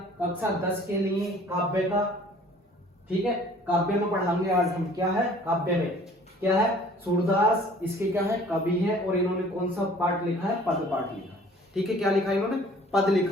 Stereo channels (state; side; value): normal; both; correlation 0.52